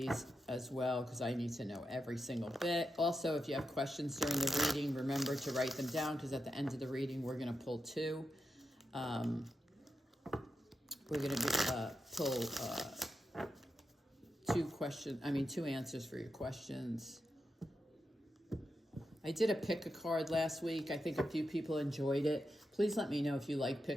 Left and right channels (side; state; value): both; normal; correlation 0.87